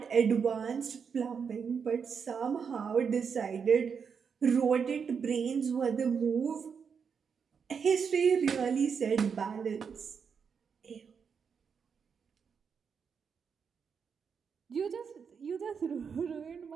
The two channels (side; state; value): left; quieter; 6.4 dB